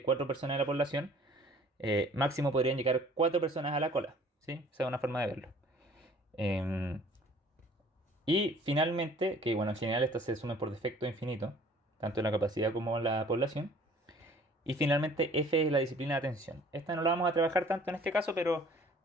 4 personas en la población, máximo podrían llegar 4 personas a la cola, ¿sí? Esa es una forma de verlo. Em, y finalmente, que bueno, en general estas se sumen por defecto infinito, tanto en la capacidad como en la población. Y finalmente F es la disciplina de atención. Esta no la vamos a trabajar tanto en este caso, pero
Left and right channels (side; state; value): both; normal; correlation 0.53